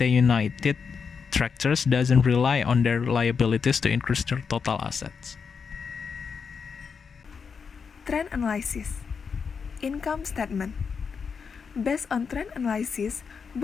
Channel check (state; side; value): quieter; right; 5.9 dB